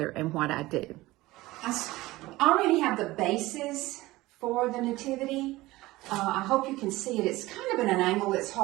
and what I do. I already have the bases for the nativity. I hope you can see it. It's kind of at an angle. It's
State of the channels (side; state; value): left; quieter; 18.9 dB